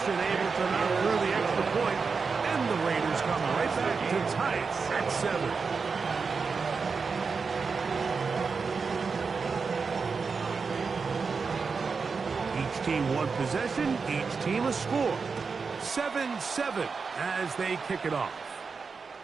able to knock through the extra point, and the Raiders come right back to tie it at 7. Each team one possession, each team a score. 7-7 as they kick it off.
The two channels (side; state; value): left; quieter; 5.0 dB